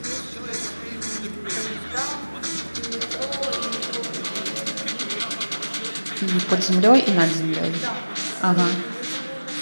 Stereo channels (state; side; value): inverted; both; correlation -1.00